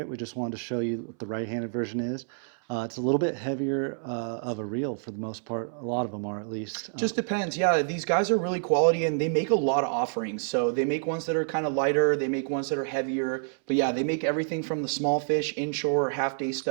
we just wanted to show you what the right-handed version is. It's a little bit heavier of a reel for the most part. A lot of them are, at least. Just depends. Yeah, these guys are really quality and they make a lot of offerings. So they make ones that are kind of lighter. They make ones that are heavier. But yeah, they make everything from the small fish, inshore, half-day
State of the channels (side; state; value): left; silent; 59 dB below the other